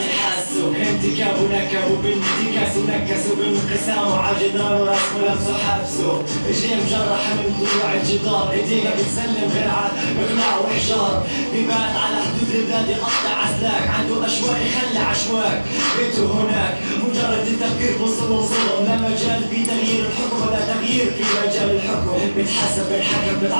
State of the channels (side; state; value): both; inverted; correlation -1.00